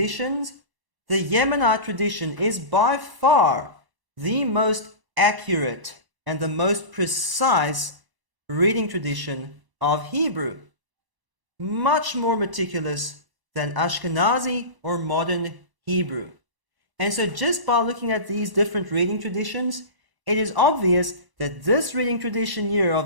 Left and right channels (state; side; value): late; left; 1.0 ms